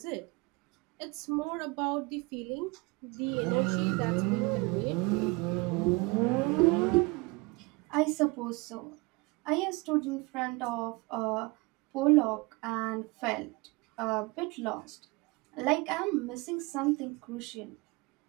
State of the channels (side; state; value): left; quieter; 26.3 dB